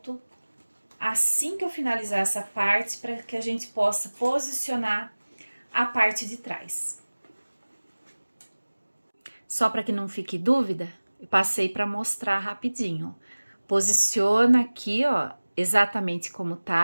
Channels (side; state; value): both; inverted; correlation -1.00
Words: assim que eu finalizar essa parte para que a gente possa posicionar a parte de trás. Só para que não fique dúvida, eu passei para mostrar rapidinho. Posiciona aqui, ó, exatamente como